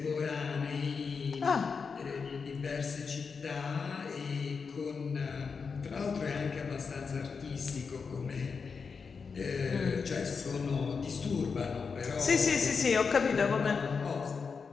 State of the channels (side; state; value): right; quieter; 5.4 dB